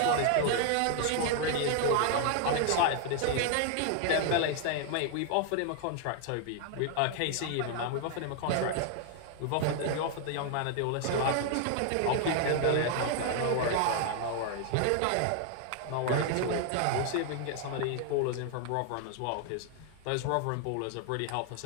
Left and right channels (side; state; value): both; different; correlation 0.00